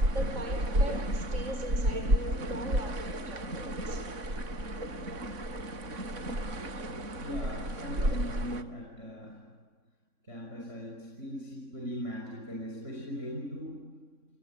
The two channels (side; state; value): left; late; 3.6 ms